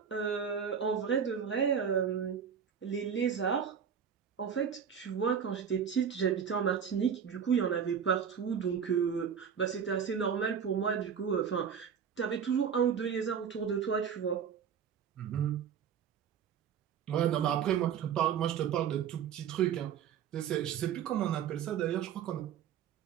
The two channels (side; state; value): left; quieter; 7.7 dB